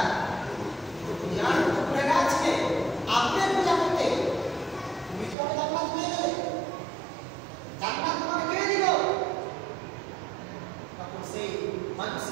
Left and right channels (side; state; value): left; drops out; at 5.4 s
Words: দুনিয়ার উপরে আছে আপনার পূজা করতে তুমি কি আমাকে জান্নাত দিয়ে দেবে, জান্নাত তোমাকে কে দিল? তখন সেই